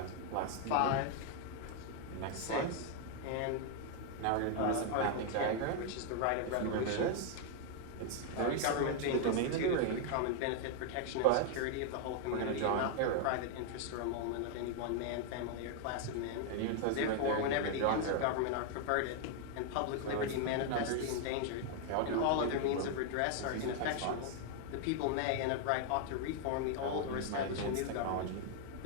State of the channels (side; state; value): both; different; correlation 0.00